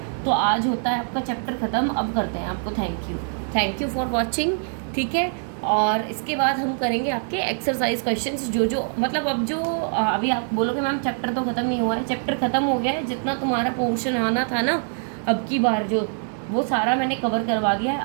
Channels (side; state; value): left; silent; 63 dB below the other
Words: तो आज होता है आपका चैप्टर ख़त्म, अब करते हैं आपको थैंक यू फॉर वॉचिंग, ठीक है। और इसके बाद हम करेंगे आपके एक्सरसाइज क्वेश्चंस, जो मतलब अब जो अभी आप बोलोगे मैम चैप्टर तो ख़त्म नहीं हुआ है, चैप्टर ख़त्म हो गया है। जितना तुम्हारा पोर्शन आना था ना अब की बार, जो वो सारा मैंने कवर करवा दिया है।